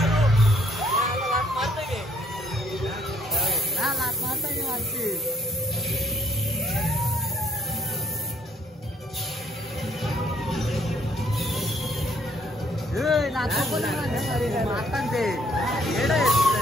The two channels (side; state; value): both; normal; correlation 0.66